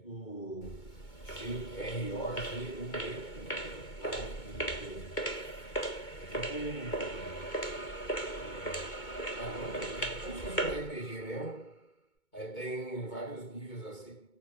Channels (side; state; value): right; late; 2.2 ms